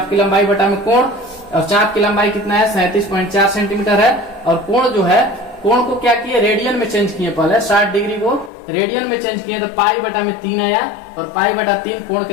की लंबाई बटा में कोण, और चाप की लंबाई कितना है, 37.4 सेंटीमीटर है। और कोण जो है, कोण को क्या किए, रेडियन में चेंज किए। पहले 60 डिग्री को रेडियन में चेंज किए तो पाई बटा में 3 आया, और पाई बटा 3 कोण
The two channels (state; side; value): drops out; right; at 8.5 s